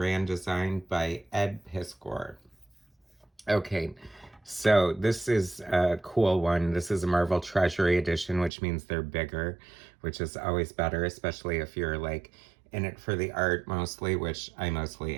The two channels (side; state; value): left; drops out; at 8.5 s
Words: Design by Ed Piskor. Okay, so this is a cool one. This is a Marvel Treasury Edition, which means they're bigger, which is always better, especially if you're like in it for the art mostly, which I mostly